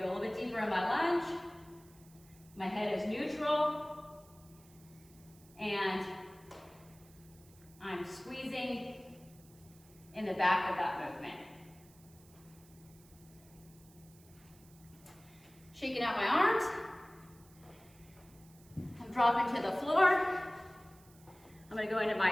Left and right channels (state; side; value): noise; right; hiss, 26 dB below the sound